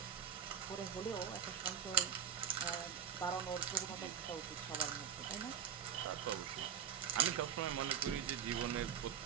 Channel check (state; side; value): quieter; left; 8.6 dB